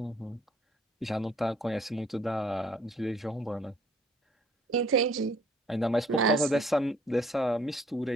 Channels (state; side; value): normal; both; correlation 0.60